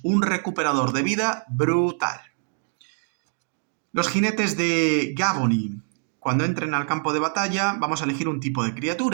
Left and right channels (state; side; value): silent; left; 57 dB below the other